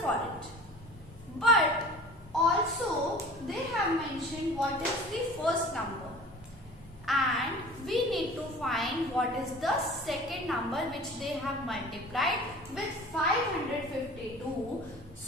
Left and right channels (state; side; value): noise; right; hum, 25 dB below the sound